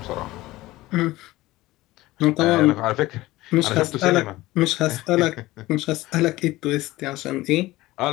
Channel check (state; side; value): quieter; right; 18.2 dB